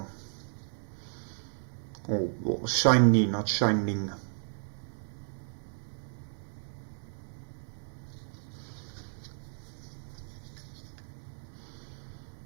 Oh, shiny, not shining.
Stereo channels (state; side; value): silent; left; digital silence